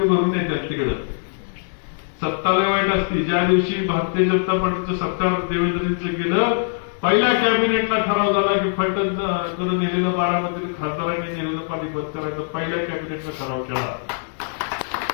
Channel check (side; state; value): right; silent; digital silence